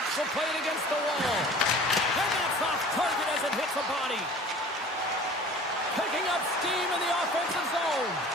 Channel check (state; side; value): normal; both; correlation 0.44